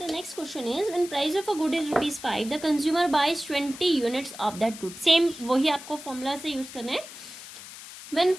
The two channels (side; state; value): left; noise; hiss, 14 dB below the sound